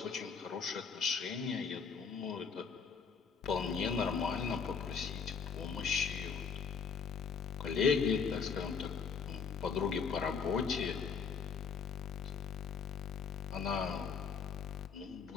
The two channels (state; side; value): quieter; right; 5.8 dB